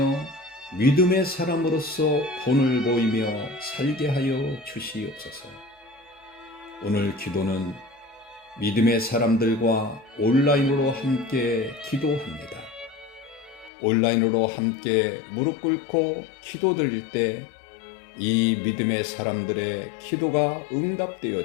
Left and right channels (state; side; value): drops out; right; at 13.7 s